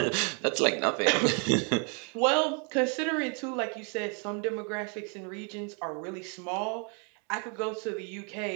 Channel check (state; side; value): quieter; left; 37.1 dB